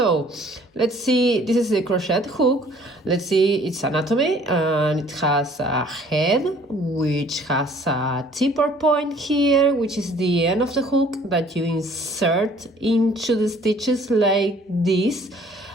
let's see, this is the crochet hook. Let's see its anatomy, and it has a head which has a tipper point here, which is the end of the hook that you insert into the stitches like this.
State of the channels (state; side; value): normal; both; correlation 0.56